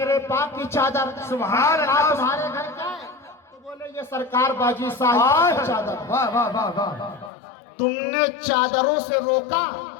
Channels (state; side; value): drops out; right; at 7.3 s